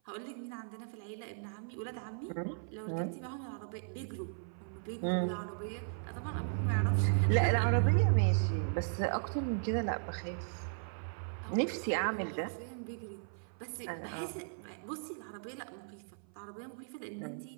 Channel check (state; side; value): silent; left; 53 dB below the other